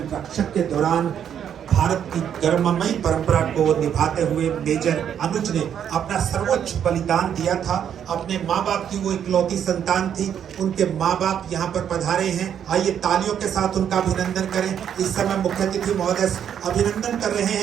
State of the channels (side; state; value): left; quieter; 8.9 dB